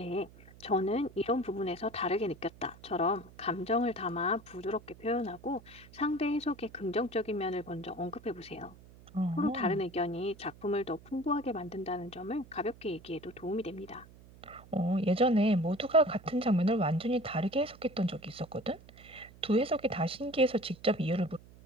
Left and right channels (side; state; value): right; noise; hum, 21 dB below the sound